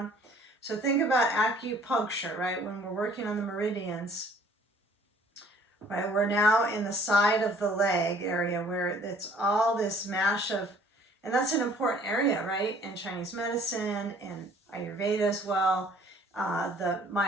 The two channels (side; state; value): both; normal; correlation 0.56